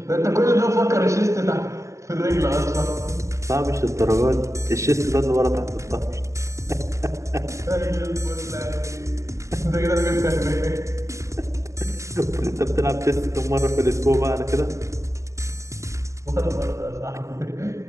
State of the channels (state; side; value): late; left; 0.15 ms